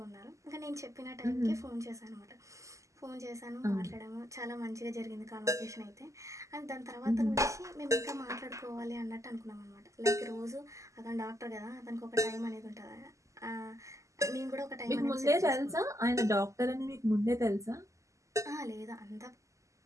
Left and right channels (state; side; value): late; left; 0.16 ms